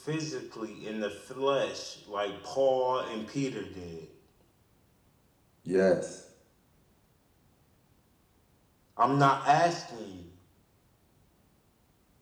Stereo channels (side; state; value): both; identical; correlation 1.00